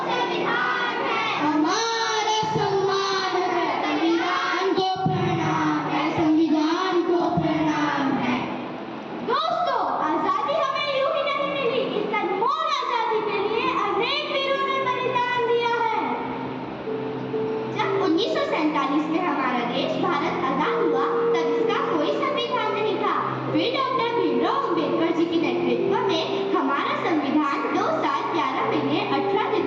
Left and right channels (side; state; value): both; identical; correlation 1.00